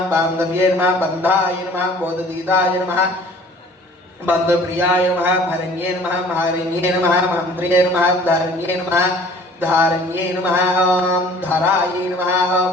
बान्धव्ये नमः बन्धाय नमः बोधदीताय नमः बन्धुप्रियाय नमः भरण्ये नमः महारण्ये नमः मन्त्रिये नमः धरण्ये नमः धारण्ये नमः ॐ धराय नमः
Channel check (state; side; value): normal; both; correlation 0.50